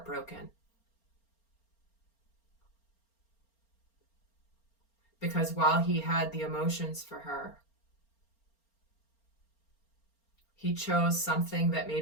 Because while he had the emotions for her, he chose something that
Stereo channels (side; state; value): right; late; 4.4 ms